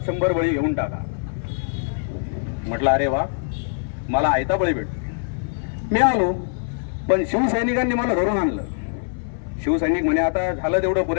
100 बळी घेऊन टाका. म्हटलं अरे वा, मला आयता बळी भेटतो. मी आलो, पण शिवसैनिकांनी मला धरून आणलं. शिवसैनिक म्हणे आता झालं तेवढं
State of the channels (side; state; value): right; silent; 63 dB below the other